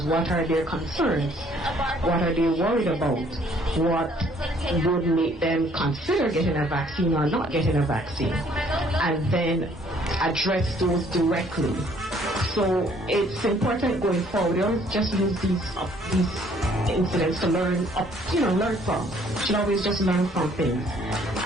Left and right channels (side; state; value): both; normal; correlation 0.61